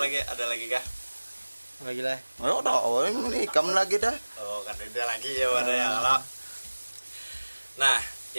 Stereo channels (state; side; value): inverted; both; correlation -1.00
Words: lagi kah? Lagi lah. Ini kamu lagi dah. Kan ada lagi ya ada ya kalau. Nah,